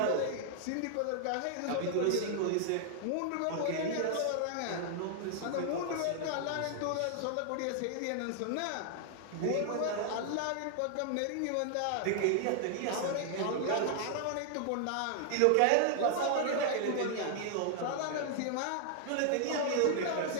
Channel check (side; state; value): both; different; correlation 0.00